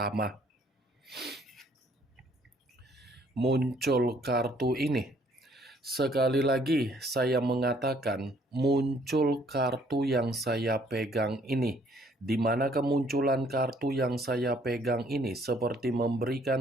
Muncul kartu ini. Sekali lagi saya mengatakan muncul kartu yang saya pegang ini, di mana kemunculan kartu yang saya pegang ini seperti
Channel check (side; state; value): both; normal; correlation 0.63